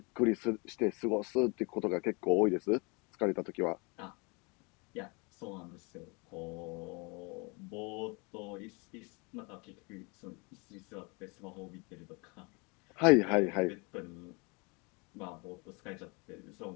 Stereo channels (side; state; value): right; quieter; 30.1 dB